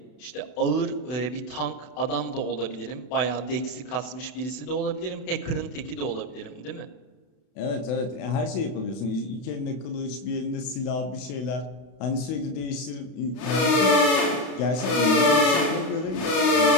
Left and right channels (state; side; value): late; right; 32 ms